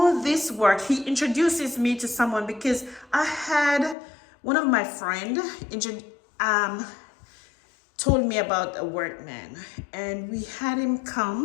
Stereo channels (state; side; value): drops out; right; at 4.0 s